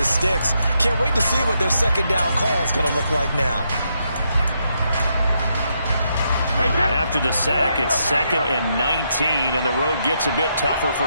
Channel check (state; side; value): inverted; both; correlation -0.79